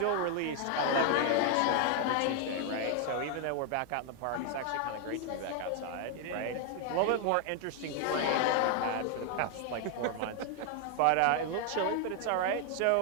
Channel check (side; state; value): both; different; correlation 0.00